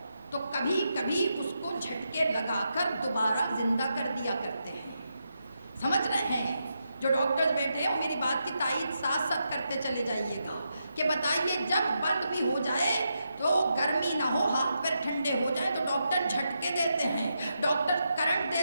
تو کبھی کبھی اس کو جھٹکے لگا کر دوبارہ زندہ کر دیا کرتے ہیں۔ سمجھ رہے ہیں؟ جو ڈاکٹرز بیٹھے ہیں وہ میری بات کی تائید ساتھ ساتھ کرتے چلے جائیے گا کہ بتائیے جب بند بھی ہو جائے تو گرمی نہ ہو، ہاتھ پیر ٹھنڈے ہو جائیں تو ڈاکٹر جھٹکے دیتے ہیں، ڈاکٹر کرنٹ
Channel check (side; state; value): both; inverted; correlation -0.83